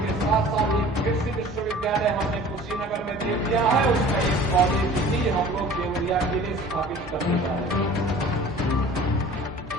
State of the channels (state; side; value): normal; both; correlation 0.45